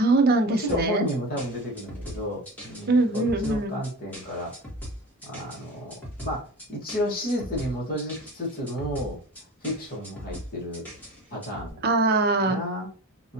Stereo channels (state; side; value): normal; both; correlation 0.34